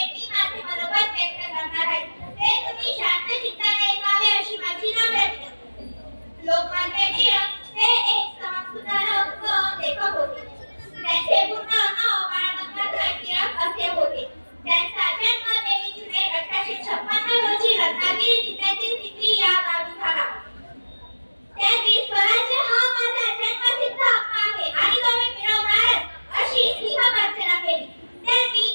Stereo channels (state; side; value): inverted; both; correlation -1.00